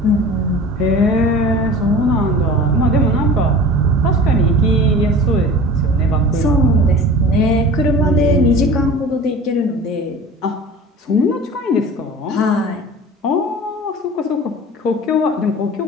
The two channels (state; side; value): normal; both; correlation 0.39